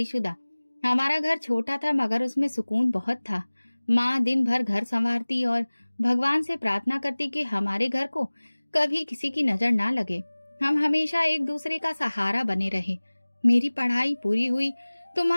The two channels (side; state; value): both; inverted; correlation -1.00